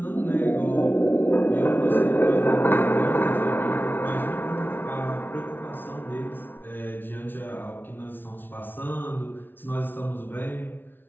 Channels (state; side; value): late; right; 0.097 ms